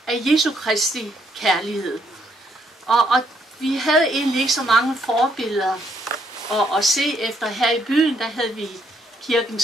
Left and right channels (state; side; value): normal; both; correlation 0.72